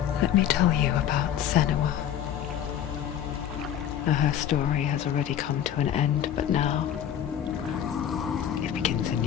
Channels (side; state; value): right; quieter; 9.9 dB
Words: Let me tell you about Senua. Now, her story has already come to an end, but now it begins anew.